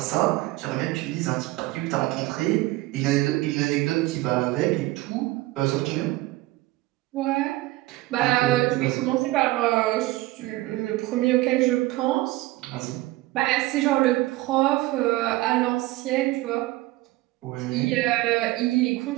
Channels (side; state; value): left; quieter; 18.8 dB